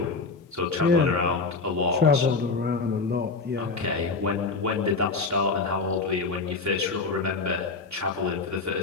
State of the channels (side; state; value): right; quieter; 4.2 dB